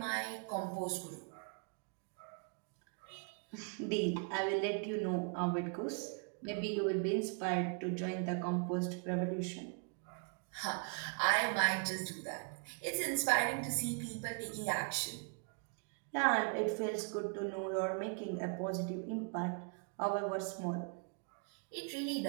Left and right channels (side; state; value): left; quieter; 38.9 dB